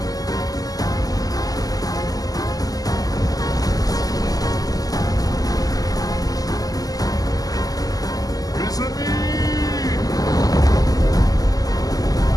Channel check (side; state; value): right; late; 0.17 ms